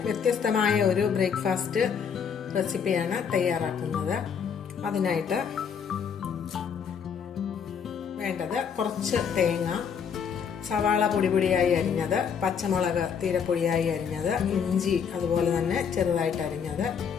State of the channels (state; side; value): quieter; right; 7.0 dB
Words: വ്യത്യസ്തമായ ഒരു ബ്രേക്ക്ഫാസ്റ്റ് റെസിപ്പിയാണ് തയ്യാറാക്കുന്നത്. അതിനായിട്ട് വേണ്ടത് കുറച്ച് തേങ്ങ, സവാള പൊടിയായി അരിഞ്ഞത്, പച്ചമുളക് തീരപ്പൊടിയായി അരിഞ്ഞത്, ഇഞ്ചി അതുപോലെ തന്നെ ചെറുതായിട്ട് അരിഞ്ഞത്,